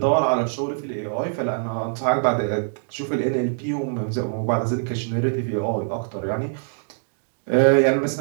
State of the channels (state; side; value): silent; left; digital silence